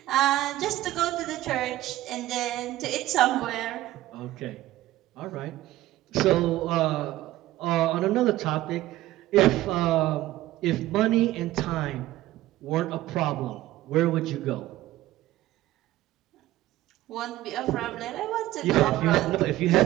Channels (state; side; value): quieter; left; 15.7 dB